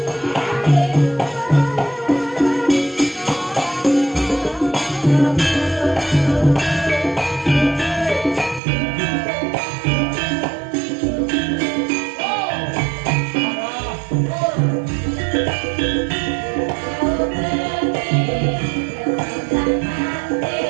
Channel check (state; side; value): drops out; left; at 8.6 s